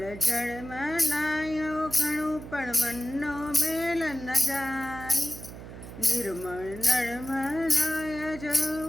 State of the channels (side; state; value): right; noise; hum, 13 dB below the sound